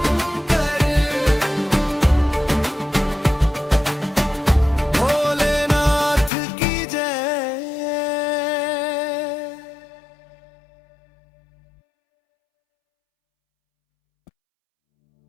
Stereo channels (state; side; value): drops out; right; at 6.3 s